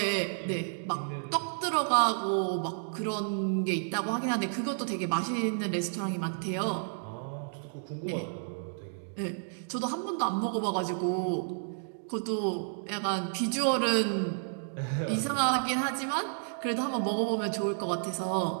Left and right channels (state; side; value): silent; left; digital silence